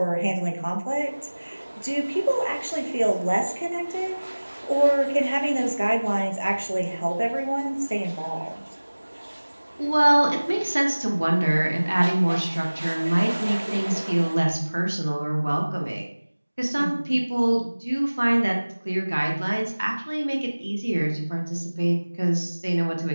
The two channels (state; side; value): inverted; both; correlation -1.00